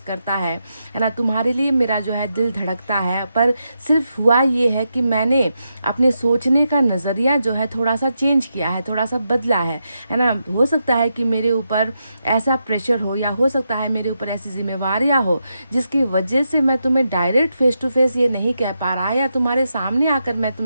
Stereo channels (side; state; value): both; inverted; correlation -0.85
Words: करता है ना, तुम्हारे लिए मेरा जो है दिल धड़कता है। पर सिर्फ हुआ ये है कि मैंने अपने सोचने का नज़रिया जो है थोड़ा सा चेंज किया है, थोड़ा सा बदला है ना। हो सकता है कि मेरे ऊपर ऐसा प्रेशर हो, या हो सकता है मेरे ऊपर ऐसी जिम्मेवारियाँ हो जिसकी वजह से मैं तुम्हें डायरेक्ट फेस टू फेस ये नहीं कह पा रहा, या तुम्हारे सामने आकर मैं